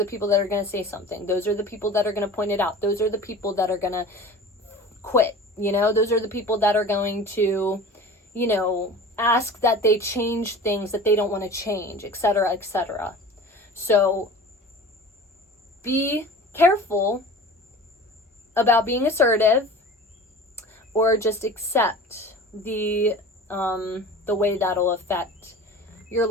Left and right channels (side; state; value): both; normal; correlation 0.39